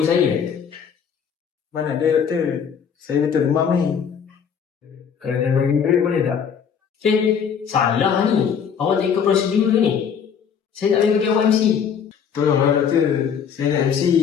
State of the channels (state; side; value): quieter; right; 7.3 dB